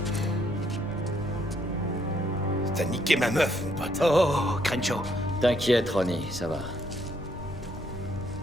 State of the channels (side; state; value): both; normal; correlation 0.71